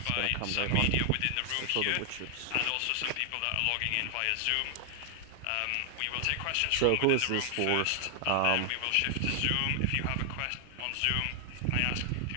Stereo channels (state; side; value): different; both; correlation 0.00